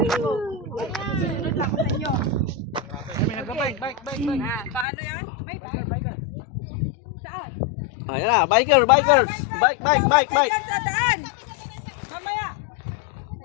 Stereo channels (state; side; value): drops out; right; at 4.9 s